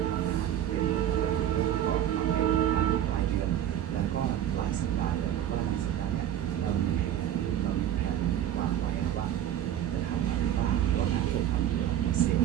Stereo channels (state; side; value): quieter; left; 11.0 dB